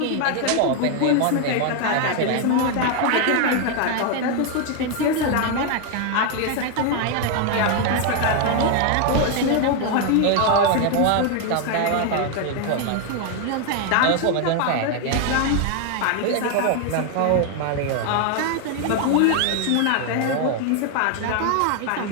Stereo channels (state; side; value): different; both; correlation 0.01